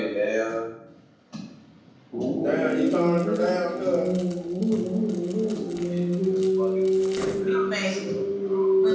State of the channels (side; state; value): both; identical; correlation 1.00